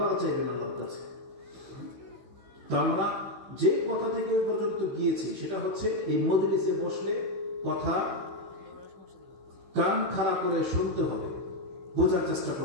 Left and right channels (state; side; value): late; left; 15 ms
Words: চাইবেন আল্লাহর কাছে। তো আমরা যে কথা থেকে ওই পর্যন্ত গিয়েছি সেটা হচ্ছে এই মজলিসে বসলে কথা কান খাড়া করে শুনতে হবে, বোঝার চেষ্টা